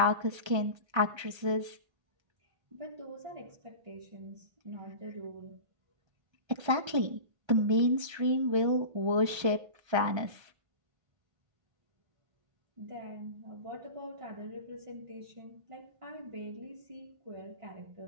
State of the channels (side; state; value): left; late; 1.3 ms